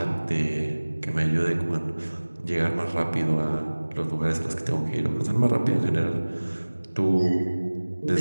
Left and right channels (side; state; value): both; inverted; correlation -1.00